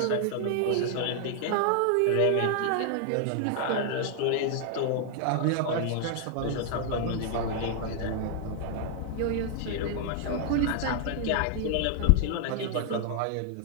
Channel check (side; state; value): both; different; correlation 0.00